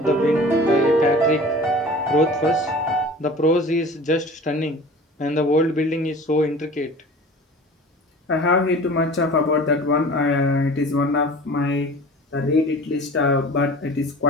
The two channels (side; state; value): both; normal; correlation 0.41